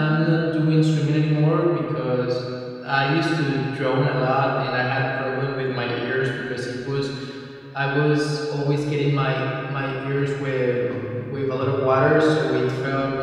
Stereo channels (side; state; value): both; identical; correlation 1.00